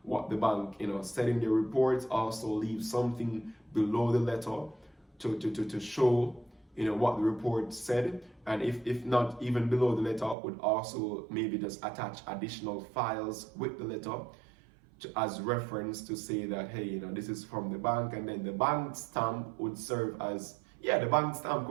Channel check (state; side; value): drops out; left; at 10.4 s